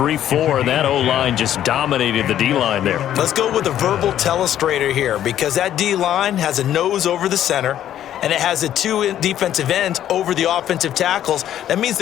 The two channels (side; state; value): right; quieter; 11.3 dB